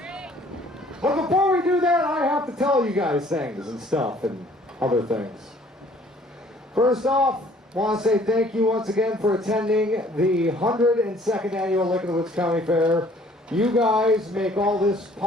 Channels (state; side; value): normal; both; correlation 0.56